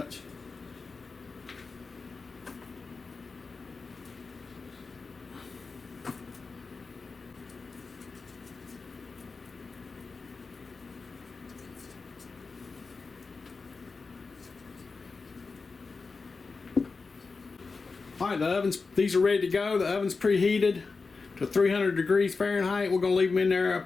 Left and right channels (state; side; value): quieter; right; 4.3 dB